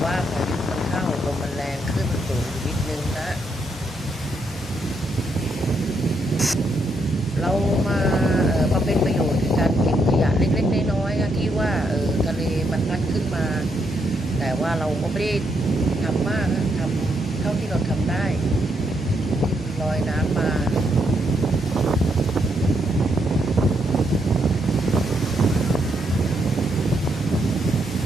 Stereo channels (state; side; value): normal; both; correlation 0.77